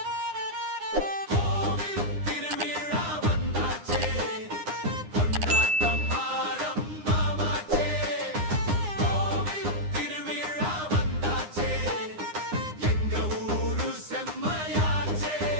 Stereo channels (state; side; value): late; left; 9.8 ms